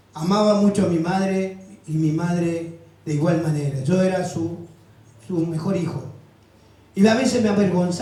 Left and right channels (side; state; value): both; identical; correlation 1.00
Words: Amaba mucho a mi madre y mi madre de igual manera. Yo era su mejor hijo. Y a veces me